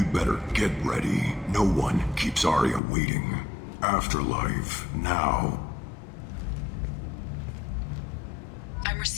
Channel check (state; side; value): drops out; right; at 2.8 s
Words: better get ready. No one keeps Aria waiting. Afterlife now. I'm